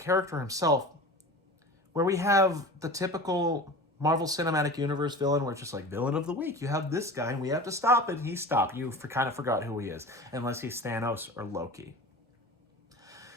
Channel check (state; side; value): normal; both; correlation 0.35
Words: himself, where we have the typical Marvel Cinematic Universe villain, where it's just like, villain of the week, you have this guy and we have to stop it. He stopped. You kind of forgot who he is, unless he's Thanos or Loki.